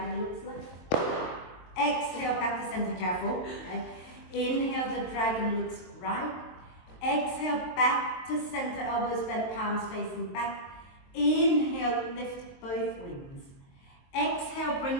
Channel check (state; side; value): late; right; 22 ms